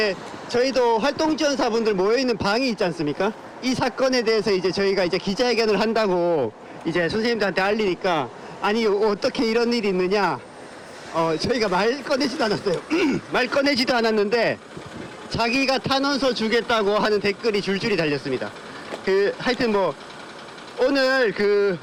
활동지원사분들 모여있는 방이 있지 않습니까? 이 사건에 대해서 저희가 기자회견을 한다고 선생님들한테 알리니까, 아니, 어떻게 이런 일이 있느냐? 저희가 말 꺼내지도 않았어요. 말 꺼내지도 않았는데, 자기가 탄원서 주겠다고 하는 댓글이 줄줄이 달렸습니다. 하여튼 오늘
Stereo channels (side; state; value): both; identical; correlation 1.00